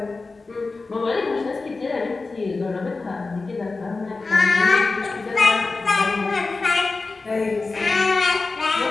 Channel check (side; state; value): right; quieter; 3.8 dB